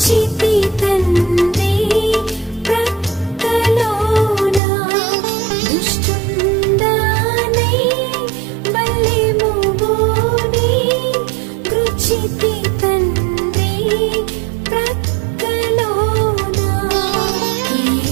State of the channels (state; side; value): drops out; left; at 4.6 s